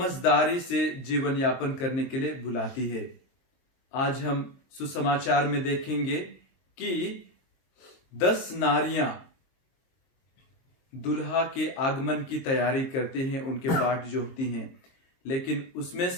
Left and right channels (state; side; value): late; right; 23 ms